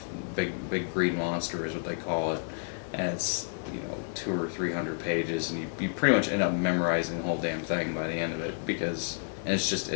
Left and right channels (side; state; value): right; silent; 58 dB below the other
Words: Big green monster is what they call it, and it's 200 or 300 pages, and you pretty much end up memorizing the whole damn thing by the end of it and